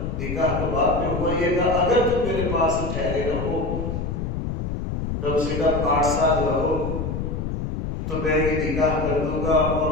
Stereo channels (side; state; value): left; noise; rumble, 3 dB below the sound